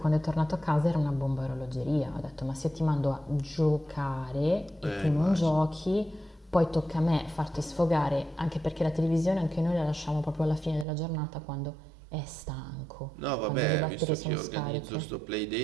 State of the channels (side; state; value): left; drops out; at 10.9 s